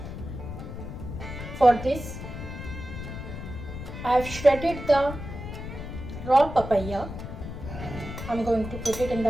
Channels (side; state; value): left; noise; rumble, 9 dB below the sound